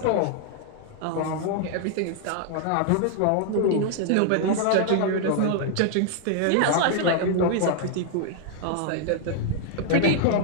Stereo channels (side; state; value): both; different; correlation 0.00